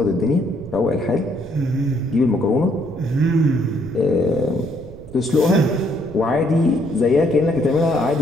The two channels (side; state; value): right; noise; rumble, 17 dB below the sound